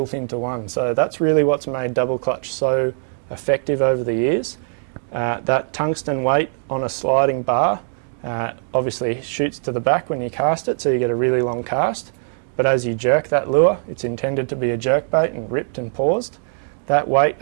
into one. So that's really what's made double clutch so effective over the years. That tungsten weight on a sliding bar obviously shoots to the back when you cast it, so you get a really long cast. But as you jerk that lure, it's intended to be a jerk bait and ripped and paused. that weight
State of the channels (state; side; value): silent; left; 65 dB below the other